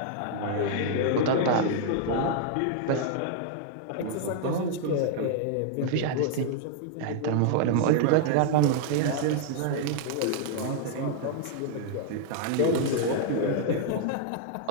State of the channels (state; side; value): different; both; correlation 0.00